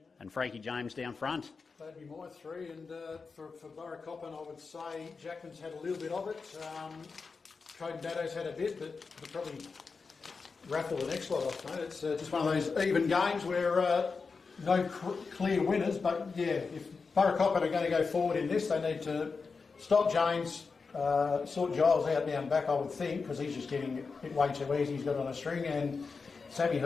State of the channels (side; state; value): right; quieter; 4.7 dB